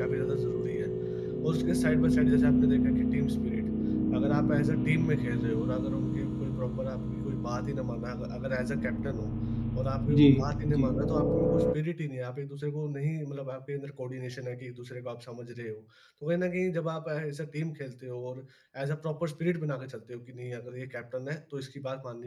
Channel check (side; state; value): both; identical; correlation 1.00